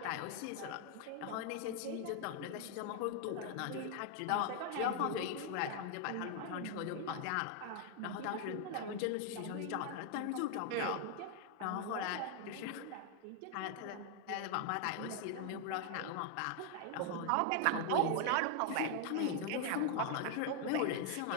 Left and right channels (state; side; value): different; both; correlation 0.00